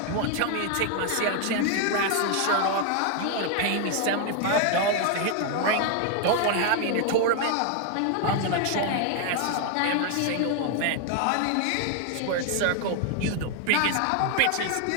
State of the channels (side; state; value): both; different; correlation 0.00